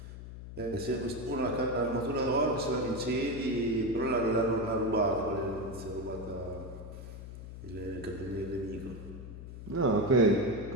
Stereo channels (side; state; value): left; noise; hum, 11 dB below the sound